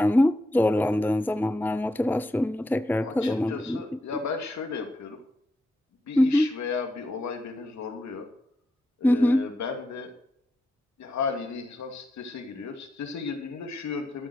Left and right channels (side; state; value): both; normal; correlation 0.85